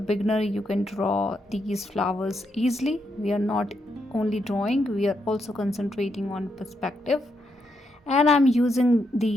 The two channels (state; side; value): normal; both; correlation 0.81